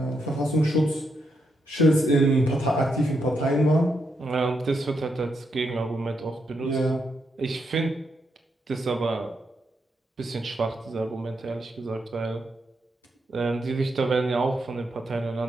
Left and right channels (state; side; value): normal; both; correlation 0.81